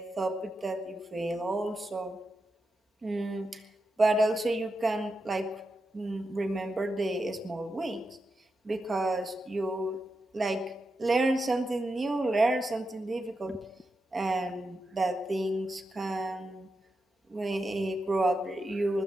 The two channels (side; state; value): both; normal; correlation 0.88